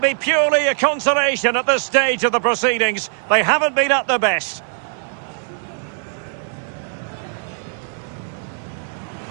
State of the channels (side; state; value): left; silent; 59 dB below the other